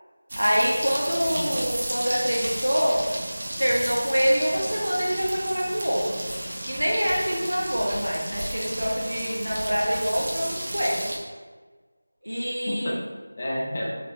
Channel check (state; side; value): inverted; both; correlation -0.99